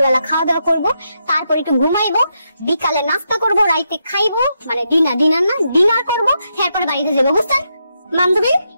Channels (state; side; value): inverted; both; correlation -0.82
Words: খাওয়া দাওয়া করবো, তারপর একটু ঘুমাইবো, বিকালে নাস্তা করবো, রাইতে খাইবো, মানে ডিনার করবো, এরপরে বাড়িতে যাবো, বুঝছেন? বান্ধবী